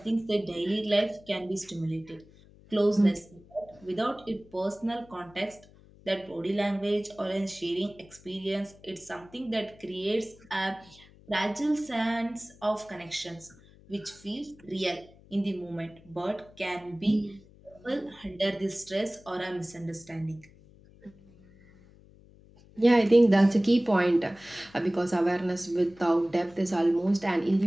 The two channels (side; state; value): left; noise; hum, 25 dB below the sound